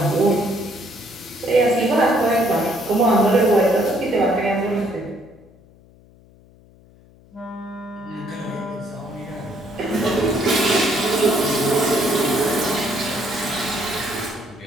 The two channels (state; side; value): noise; left; hum, 27 dB below the sound